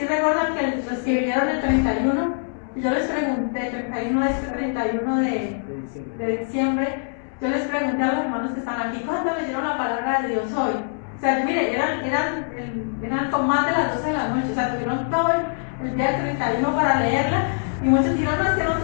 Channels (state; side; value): silent; right; digital silence